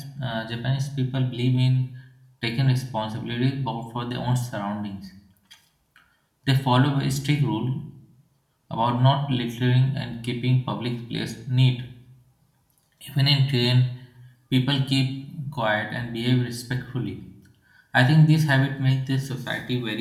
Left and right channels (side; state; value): both; identical; correlation 1.00